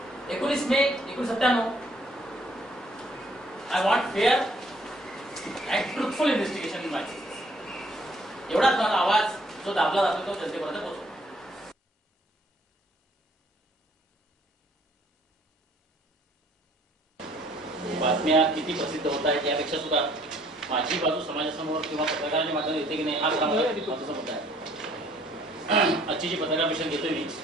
19 मे 1997. I want fair and truthful investigation in my cases. एवढाच माझा आवाज जो दाबला जातो तो जनतेपर्यंत पोहोचतो. बातम्या किती प्रसिद्ध होत आहेत यापेक्षा सुद्धा माझी बाजू समाजासमोर किंवा पत्रकारांच्या माध्यमातून येते की नाही हा महत्त्वाचा मुद्दा आहे. आजची जी पत्रकार परिषद घेतोय मी,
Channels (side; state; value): both; normal; correlation 0.62